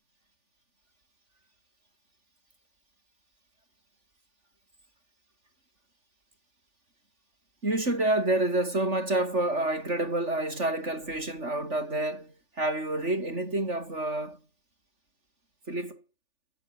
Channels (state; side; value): late; left; 3.4 ms